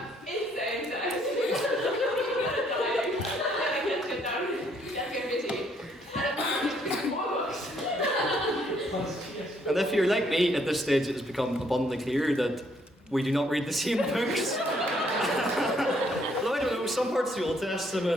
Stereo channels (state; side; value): normal; both; correlation 0.68